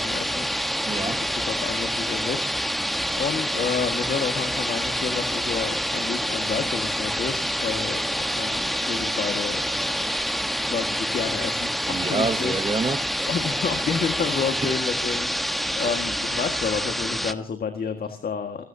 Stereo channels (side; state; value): both; normal; correlation 0.77